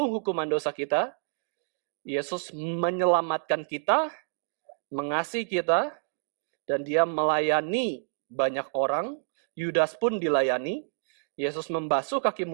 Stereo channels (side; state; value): left; silent; digital silence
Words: hukuman dosa kita, Yesus menyelamatkan kita, mengasihi kita, dan Dia melayani banyak orang. Yudas pun dilayani. Yesus membasuh kaki